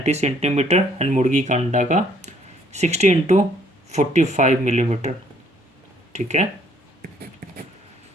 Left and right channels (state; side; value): normal; both; correlation 0.64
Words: सेंटीमीटर एंड मुर्गी का अंडा का 60x45 मिलीमीटर। ठीक है,